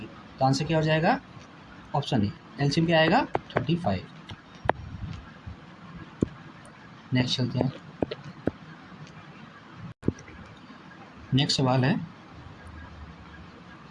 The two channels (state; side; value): identical; both; correlation 1.00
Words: तो आंसर क्या हो जाएगा ऑप्शन ए, एलसीएम क्या आएगा 35। नेक्स्ट चलते हैं। नेक्स्ट सवाल है